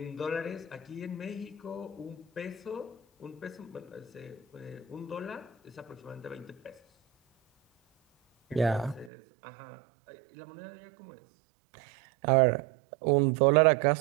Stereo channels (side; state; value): left; drops out; at 9.1 s